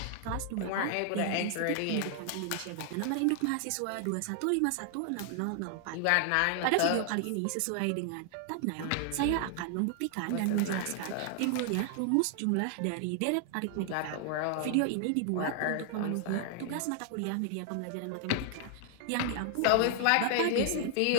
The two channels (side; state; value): both; different; correlation 0.00